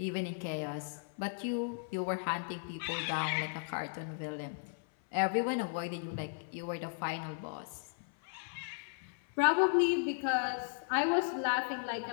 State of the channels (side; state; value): right; silent; 54 dB below the other